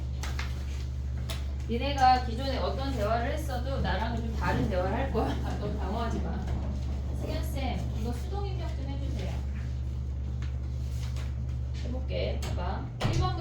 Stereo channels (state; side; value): identical; both; correlation 1.00